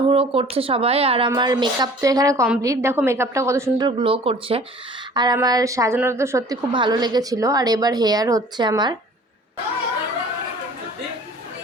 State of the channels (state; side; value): normal; both; correlation 0.48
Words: করছে সবাই। আর আমার মেকআপ তো এখানে কমপ্লিট, দেখো মেকআপটা কত সুন্দর গ্লো করছে। আর আমার সাজানোটা তো সত্যি খুব ভালো লেগেছিল। আর এবার হেয়ার হচ্ছে আমার।